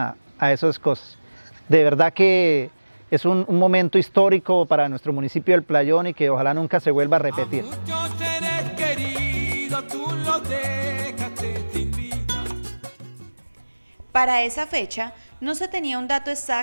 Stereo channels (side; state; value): both; inverted; correlation -1.00